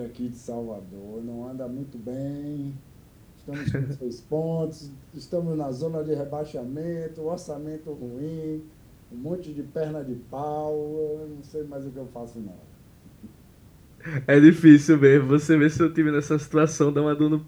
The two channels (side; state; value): both; identical; correlation 1.00